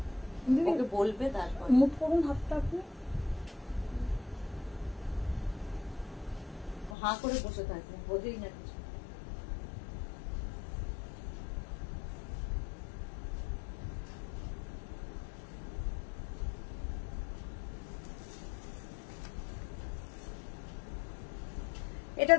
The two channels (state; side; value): drops out; right; at 7.0 s